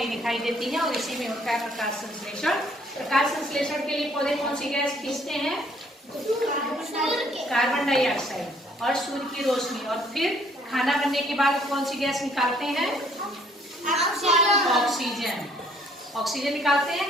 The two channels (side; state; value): both; normal; correlation 0.62